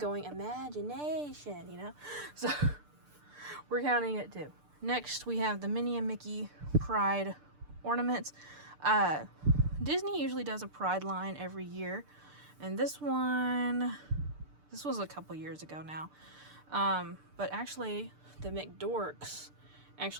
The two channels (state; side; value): late; left; 6.7 ms